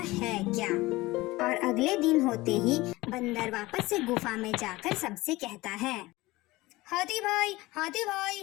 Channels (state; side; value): quieter; right; 20.1 dB